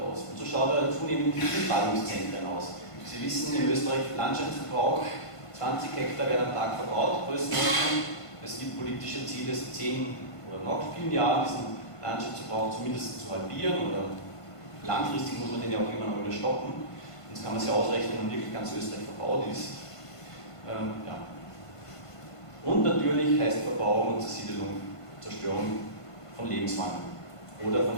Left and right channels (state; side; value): late; right; 1.5 ms